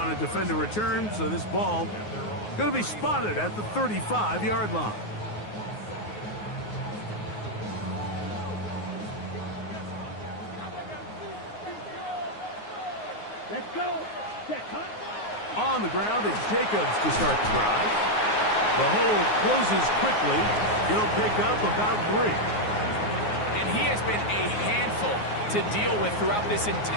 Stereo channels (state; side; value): late; right; 9.5 ms